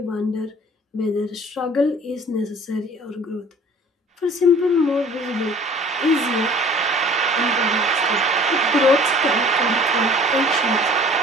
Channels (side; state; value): both; normal; correlation 0.50